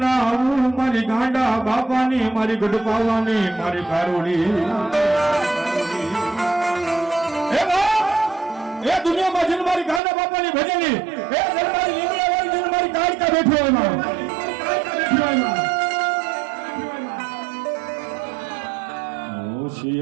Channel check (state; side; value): drops out; left; at 10.0 s